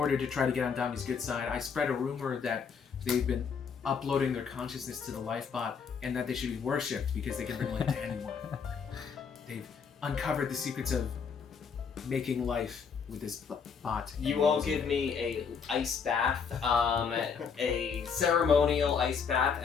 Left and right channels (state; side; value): quieter; right; 6.3 dB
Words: to try to get on Dami's good side, I spread a rumor that they've been uploading their consciousness to the lifebot and that they should be worshipped because they can bring life to anyone. They've uncovered the secrets of making life with this bot. You won't give me a ice bath, a ceremonial ice bath,